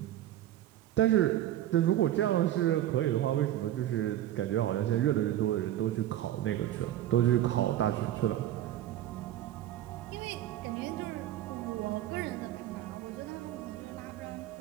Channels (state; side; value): quieter; left; 12.9 dB